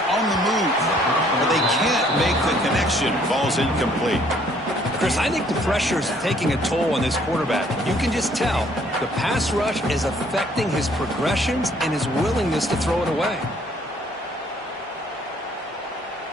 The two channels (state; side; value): normal; both; correlation 0.62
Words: on the move, but they can't make the connection. Falls incomplete. Chris, I think the pressure is taking a toll on this quarterback. You can just tell the pass rush is affecting his progressions and his willingness to throw it away.